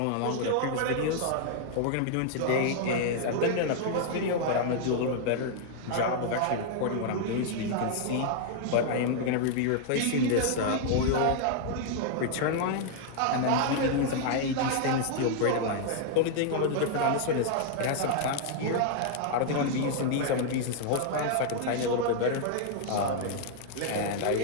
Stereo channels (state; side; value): different; both; correlation -0.01